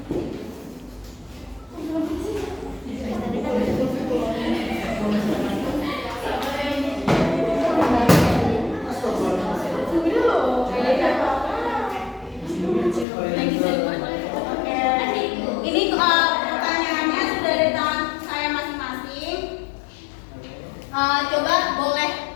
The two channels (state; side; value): drops out; right; at 13.1 s